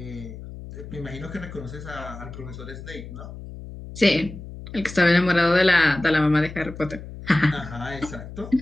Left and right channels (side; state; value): left; noise; hum, 13 dB below the sound